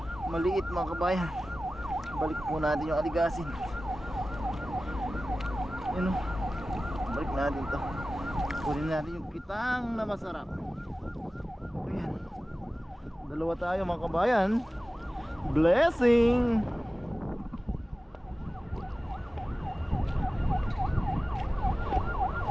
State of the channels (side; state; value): both; normal; correlation 0.96